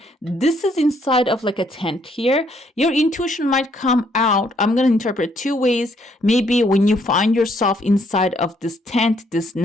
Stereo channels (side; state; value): both; normal; correlation 0.69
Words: this is inside of like a tent here. Your intuition might come out. I'm going to interpret 2 ways. Maybe when you find yourself inside of this tent, this